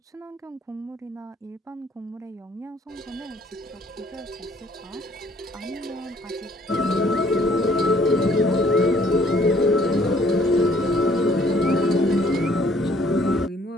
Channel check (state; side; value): normal; both; correlation 0.61